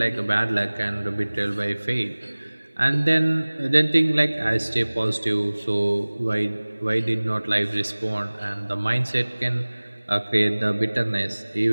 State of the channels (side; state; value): both; inverted; correlation -1.00